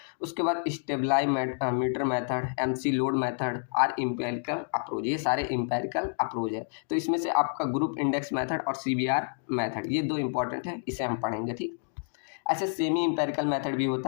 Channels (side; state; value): right; silent; digital silence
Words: उसके बाद stabilometer method, McLeod method और इम्पेरिकल अप्रोच, ये सारे इम्पेरिकल अप्रोच है। तो इसमें से आपका ग्रुप इंडेक्स मेथड और सीबीआर मेथड, ये दो इंपॉर्टेंट है, इसे हम पढ़ेंगे। ठीक, ऐसे सेमी इंपेरिकल मेथड भी